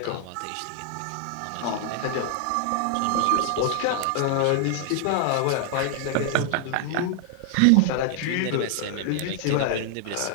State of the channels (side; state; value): both; different; correlation 0.00